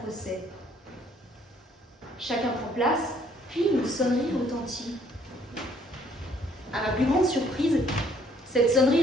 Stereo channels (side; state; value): both; normal; correlation 0.63